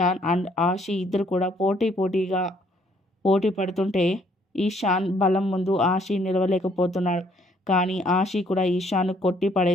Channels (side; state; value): both; normal; correlation 0.65